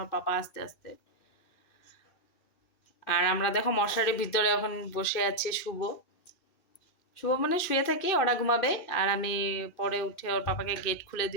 ওর পাপা আসতে আসতে। আর আমরা দেখো মশারির ভিতরে এখন বসে আছি। শুভ মানে শুয়ে থাকি, ওরা ঘুমাবে আর আমি পরে উঠে ওর পাপাকে গেট খুলে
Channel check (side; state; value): right; late; 2.6 ms